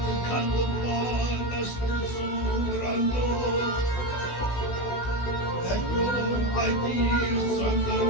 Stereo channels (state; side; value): late; right; 16 ms